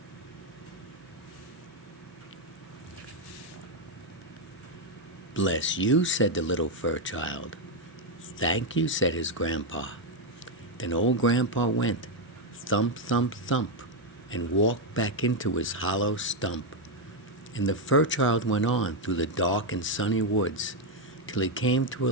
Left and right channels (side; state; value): both; normal; correlation 0.03